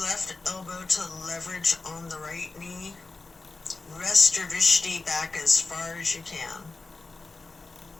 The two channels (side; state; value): right; quieter; 3.7 dB